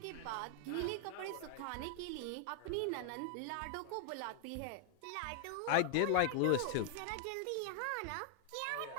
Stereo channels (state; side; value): different; both; correlation 0.00